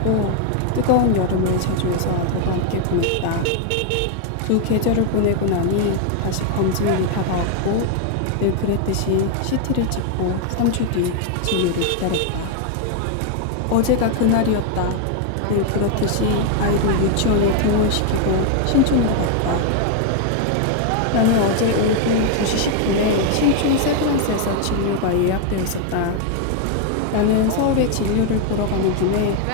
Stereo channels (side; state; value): both; different; correlation 0.00